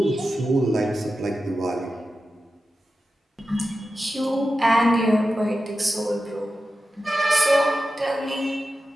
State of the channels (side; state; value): both; normal; correlation 0.92